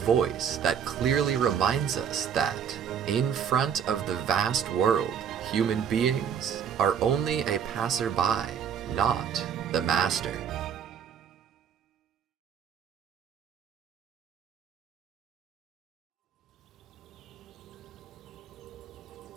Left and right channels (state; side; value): quieter; left; 7.9 dB